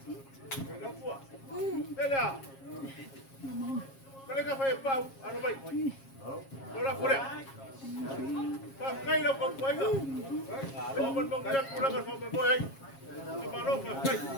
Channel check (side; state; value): right; late; 7.4 ms